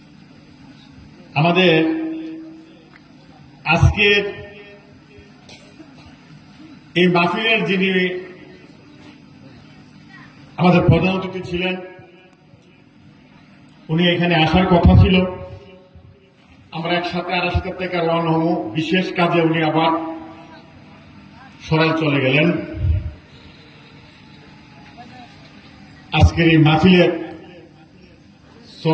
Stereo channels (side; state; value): both; identical; correlation 1.00